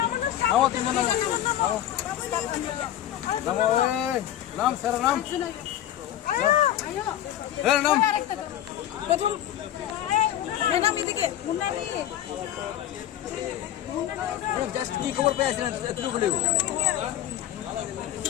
नाम सर नाम नाम प्रथम मैडम इदिके मुन्नानी जस्ट की खबर पे आছিলেন এতটুকু বলে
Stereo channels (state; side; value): quieter; right; 12.0 dB